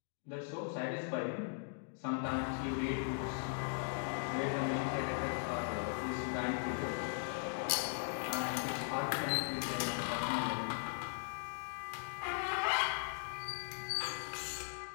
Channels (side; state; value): right; silent; digital silence